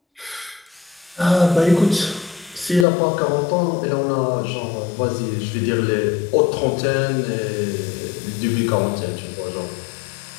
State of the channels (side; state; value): right; drops out; at 2.9 s